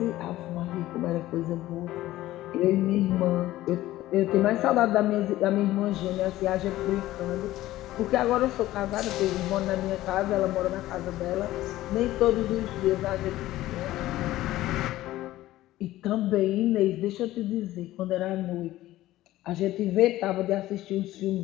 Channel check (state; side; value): quieter; right; 15.6 dB